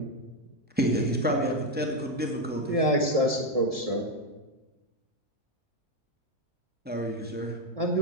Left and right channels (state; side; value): normal; both; correlation 0.06